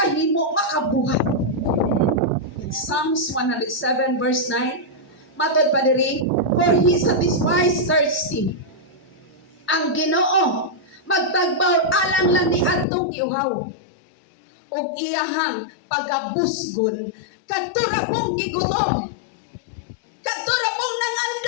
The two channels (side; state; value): right; drops out; at 12.9 s